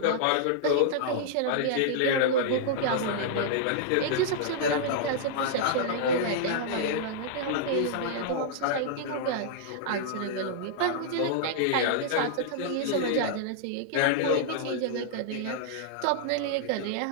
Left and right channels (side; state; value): both; different; correlation -0.02